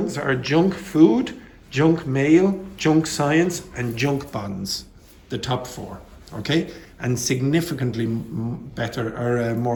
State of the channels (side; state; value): both; identical; correlation 1.00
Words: are junk food, junk mail, junk science, and junk bonds. The top four. Okay, and significantly better or